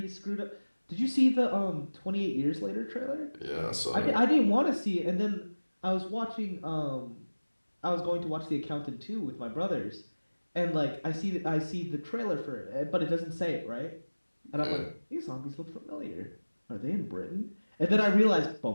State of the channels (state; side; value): inverted; both; correlation -1.00